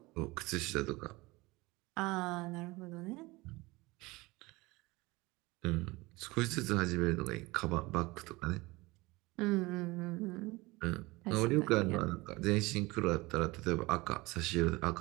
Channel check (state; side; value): quieter; left; 22.3 dB